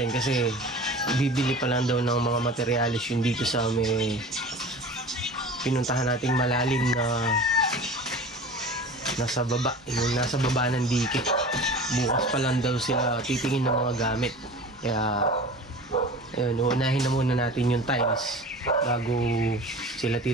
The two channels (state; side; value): normal; both; correlation 0.38